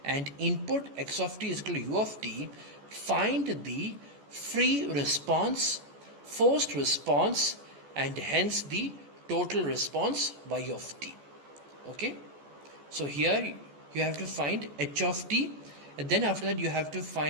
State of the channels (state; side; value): late; left; 14 ms